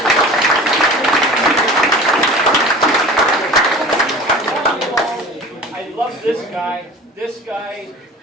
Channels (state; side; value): normal; both; correlation 0.39